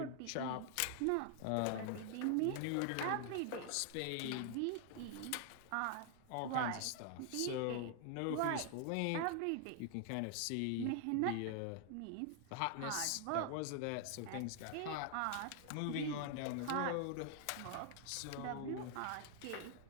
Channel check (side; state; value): both; different; correlation 0.00